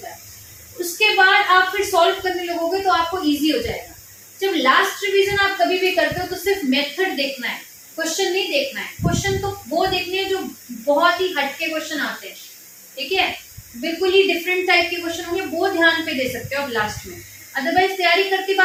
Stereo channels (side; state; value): both; identical; correlation 1.00